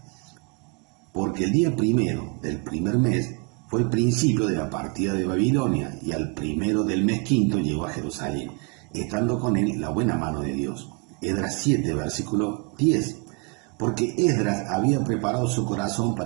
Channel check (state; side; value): quieter; left; 31.7 dB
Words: Porque el día primero del primer mes fue el principio de la partida de Babilonia, y al primero del mes quinto llegó a Jerusalén, estando con él la buena mano de Dios. Esdras 7, versículo 10. Porque Esdras había preparado su corazón